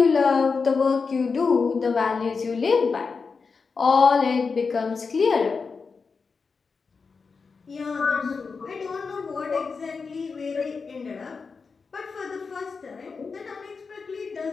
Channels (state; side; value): quieter; right; 4.9 dB